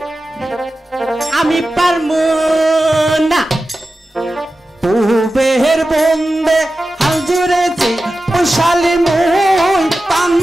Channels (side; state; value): both; normal; correlation 0.94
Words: আমি পারমু না পূবের বন্ধে হাল জুড়েছি ওই শালি মুই